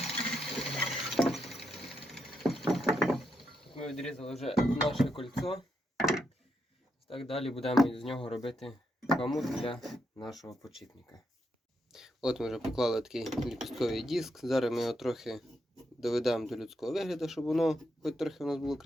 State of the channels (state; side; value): normal; both; correlation 0.81